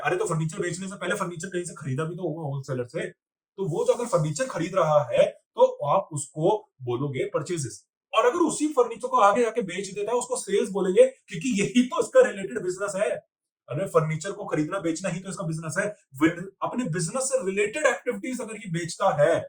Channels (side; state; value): both; identical; correlation 1.00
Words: तो फर्नीचर बेचने से पहले फर्नीचर कहीं से खरीदा भी तो होगा होलसेलर से, तो वो जो अगर फर्नीचर खरीद रहा है तो आप उसको बोलोगे परचेजेस। और अगर उसी फर्नीचर को आगे आके बेच देता है उसको सेल्स बोलेंगे, क्योंकि यही तो इसका रिलेटेड बिजनेस है। अरे फर्नीचर को खरीदना बेचना ही तो इसका बिजनेस है। अपने बिजनेस से रिलेटेड एक्टिविटीज अगर ये बेचता है